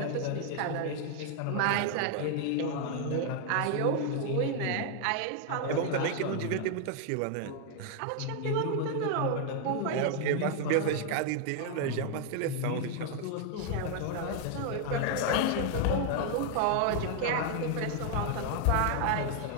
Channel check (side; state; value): both; different; correlation 0.00